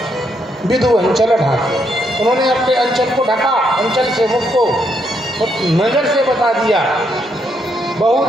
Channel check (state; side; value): normal; both; correlation 0.76